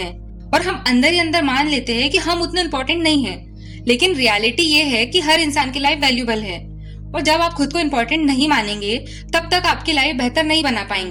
और हम अंदर ही अंदर मान लेते हैं कि हम उतने इम्पोर्टेंट नहीं हैं। लेकिन रियलिटी ये है कि हर इंसान की लाइफ वैल्यूबल है और जब आप खुद को इम्पोर्टेंट नहीं मानेंगे तब तक आपकी लाइफ बेहतर नहीं बना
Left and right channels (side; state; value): both; identical; correlation 1.00